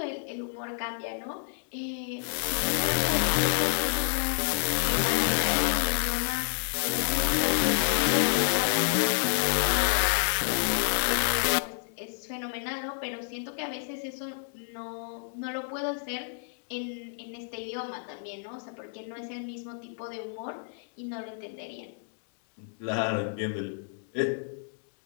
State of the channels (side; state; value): right; silent; digital silence